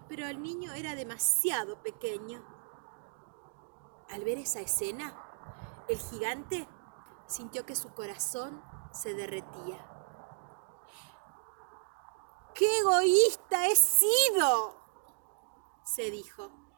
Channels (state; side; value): silent; left; digital silence